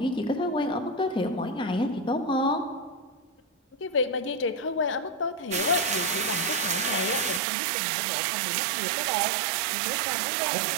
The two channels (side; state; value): left; drops out; at 7.4 s